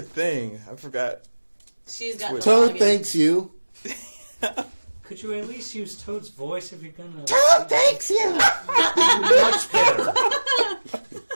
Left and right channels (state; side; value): inverted; both; correlation -1.00